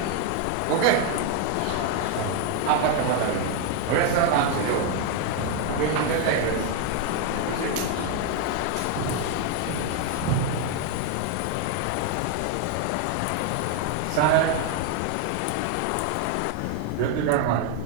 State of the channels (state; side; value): different; both; correlation 0.01